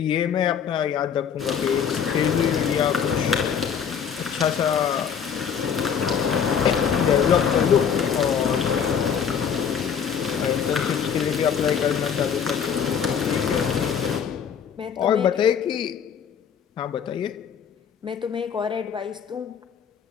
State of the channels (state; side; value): quieter; right; 7.5 dB